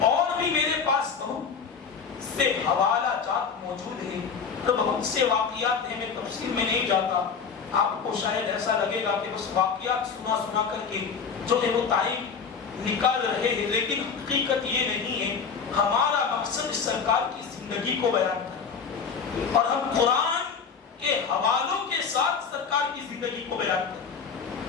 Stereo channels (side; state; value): right; quieter; 6.0 dB